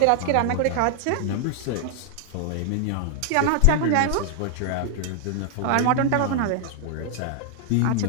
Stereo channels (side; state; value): both; different; correlation 0.00